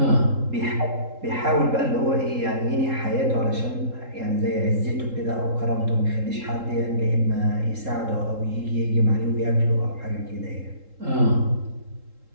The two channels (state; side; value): late; left; 3.8 ms